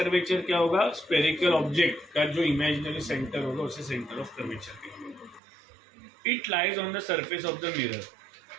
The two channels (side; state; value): left; drops out; at 5.4 s